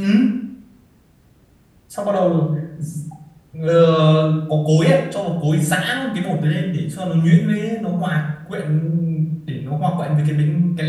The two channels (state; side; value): identical; both; correlation 1.00